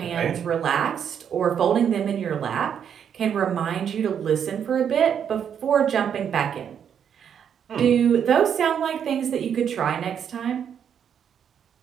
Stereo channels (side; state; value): left; quieter; 8.3 dB